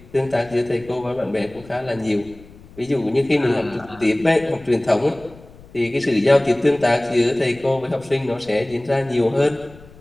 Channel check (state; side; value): noise; left; rumble, 22 dB below the sound